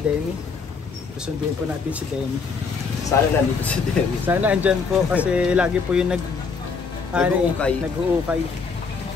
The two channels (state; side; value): quieter; right; 5.1 dB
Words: Susundin po natin si Demi. Sana nandito si Demi. Sana andyan po kasi lagi po yung nag-uukay.